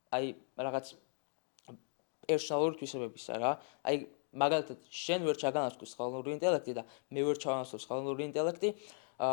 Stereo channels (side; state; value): right; silent; 53 dB below the other